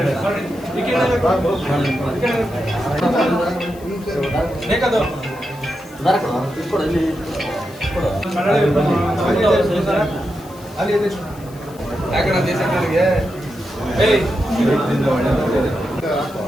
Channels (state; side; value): noise; left; hiss, 23 dB below the sound